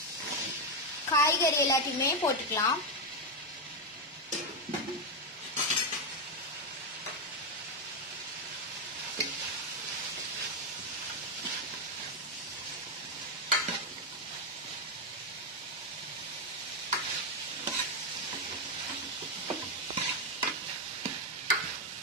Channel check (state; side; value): normal; both; correlation 0.05